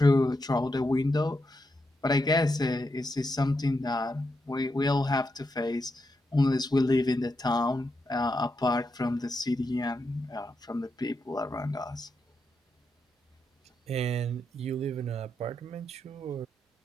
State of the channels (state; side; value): normal; both; correlation 0.84